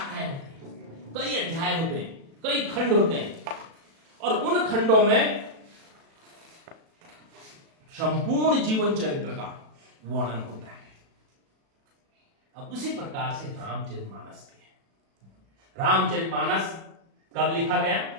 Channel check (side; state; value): left; late; 36 ms